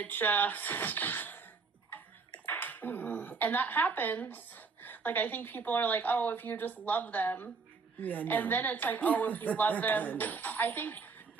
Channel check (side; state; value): left; quieter; 4.7 dB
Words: just, and that happens. Like, I think people are like, oh, if you just love them. Yeah, no. And then it's like, oh, if you love them. I